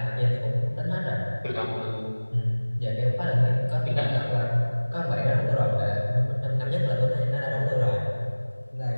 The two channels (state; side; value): inverted; both; correlation -1.00